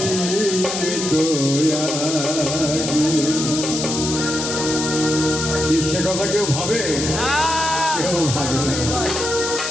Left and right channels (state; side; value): noise; left; hiss, 4 dB below the sound